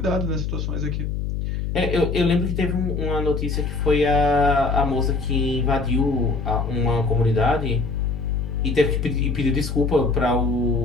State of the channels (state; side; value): noise; left; hum, 2 dB below the sound